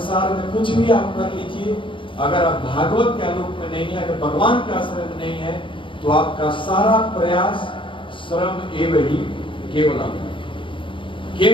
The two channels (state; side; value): late; right; 0.25 ms